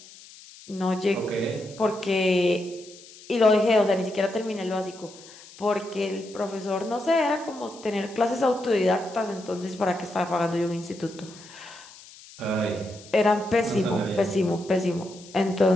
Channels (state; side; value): noise; left; hiss, 20 dB below the sound